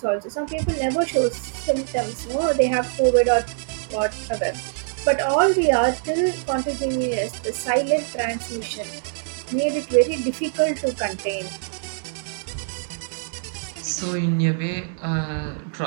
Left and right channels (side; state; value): left; silent; digital silence